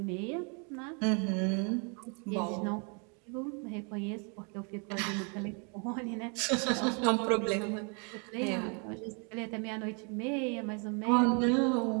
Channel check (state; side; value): quieter; left; 36.3 dB